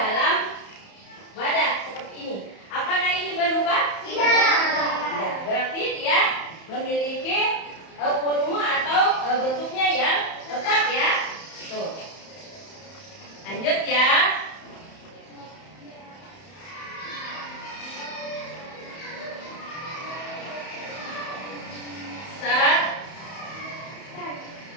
wadah seperti ini?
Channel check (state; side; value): late; right; 31 ms